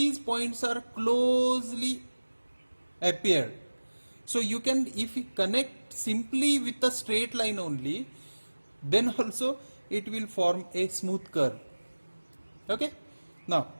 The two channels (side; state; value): both; inverted; correlation -1.00